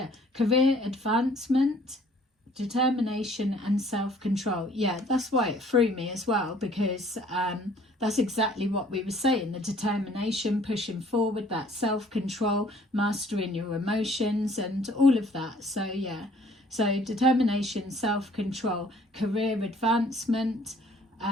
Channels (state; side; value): normal; both; correlation 0.57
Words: Career advancement, determination and self-control. Yeah, that's why it threw me as well, because that's exactly what we were saying. The determination, pushing forward, that self-control, mastering your emotions and all of that. So yeah, so determination, self-control, career advancement,